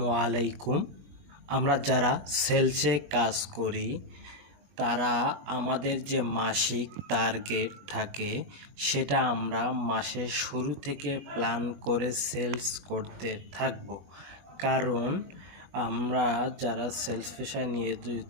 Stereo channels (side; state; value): left; late; 21 ms